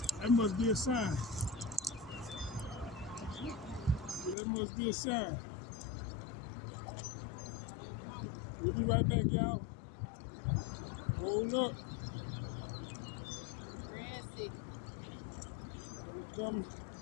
That must be a sign. That must be a sign. We'll be right back, y'all. Hold up. Grassy. I'm coming.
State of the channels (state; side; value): drops out; right; at 4.4 s